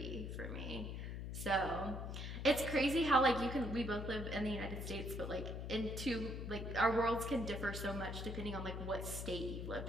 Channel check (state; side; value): noise; left; hum, 5 dB below the sound